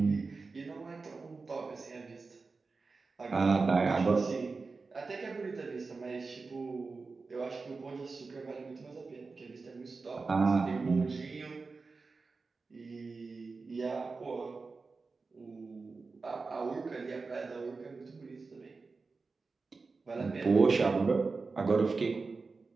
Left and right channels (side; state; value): left; quieter; 4.2 dB